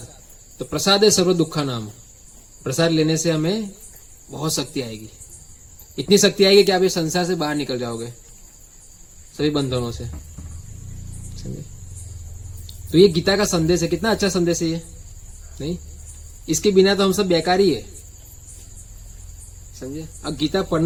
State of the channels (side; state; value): both; identical; correlation 1.00